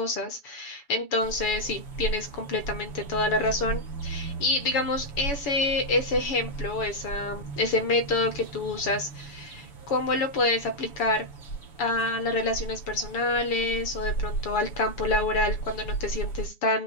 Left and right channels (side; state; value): right; late; 7.1 ms